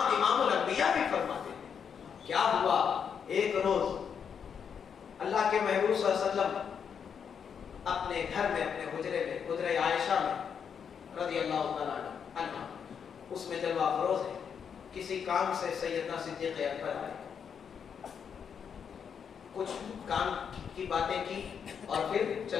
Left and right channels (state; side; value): quieter; right; 7.2 dB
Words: इमामुल अंबिया भी फरमाते हैं। क्या हुआ? एक रोज अल्लाह के महबूब सल्लल्लाहु अलैहि वसल्लम अपने घर में, अपने हुजरे में, हुजरे आयशा में रज़ी अल्लाह तआला अन्हा, उसमें जलवा फरोज है, किसी काम से सैयदना सिद्दीक़ अकबर आए, कुछ काम की बातें की और फिर